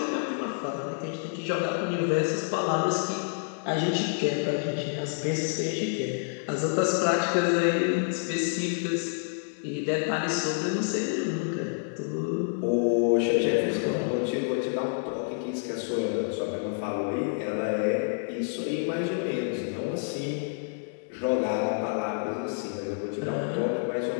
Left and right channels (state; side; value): silent; right; digital silence